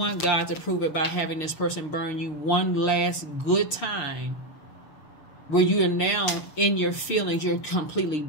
God to prove it by having this person burn you one last good time, where you are now in your feelings. You're completely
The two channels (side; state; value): right; late; 6.5 ms